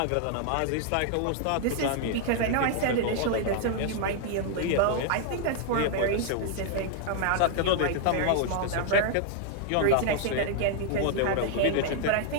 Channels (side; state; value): both; different; correlation 0.00